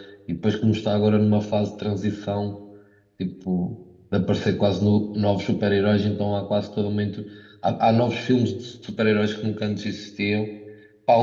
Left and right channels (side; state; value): both; identical; correlation 1.00